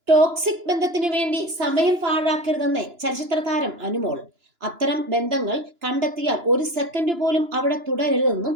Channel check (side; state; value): left; late; 2.9 ms